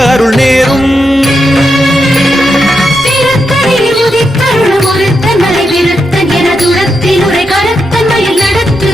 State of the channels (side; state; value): both; normal; correlation 0.85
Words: அருள் நேரும். திருத்தணியில் உதித்தருளும் ஒருத்தன் மலை விருத்தன் என துரத்தில் உரை கருத்தன் மயில் நடத்து